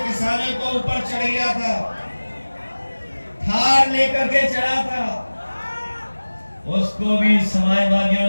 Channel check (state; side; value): inverted; both; correlation -1.00